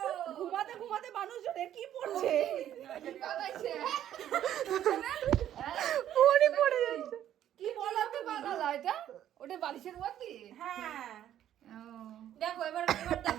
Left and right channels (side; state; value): left; quieter; 11.3 dB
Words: ঘুমাতে ঘুমাতে মানুষজন কি পড়ছে? পড়ে পড়ে যাচ্ছে। কি বলাতে বানালা এটা? ওটা বালিশের মধ্যে? হ্যাঁ, দেখো এবার দেখো